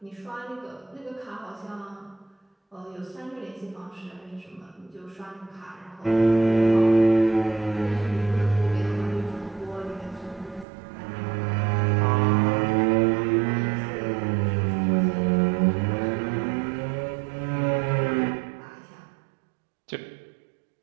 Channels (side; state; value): left; drops out; at 10.7 s